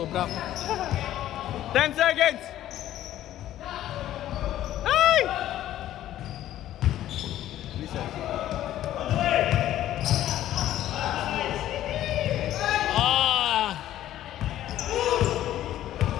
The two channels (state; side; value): quieter; right; 12.9 dB